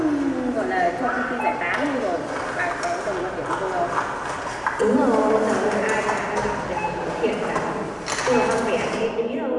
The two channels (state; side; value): identical; both; correlation 1.00